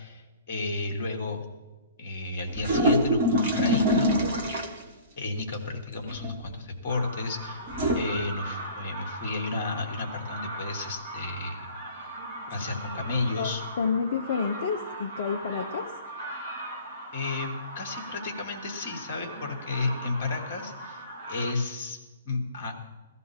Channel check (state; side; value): inverted; both; correlation -0.49